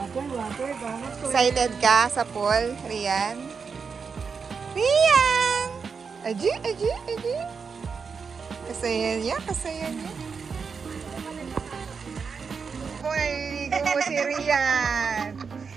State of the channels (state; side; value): quieter; left; 5.6 dB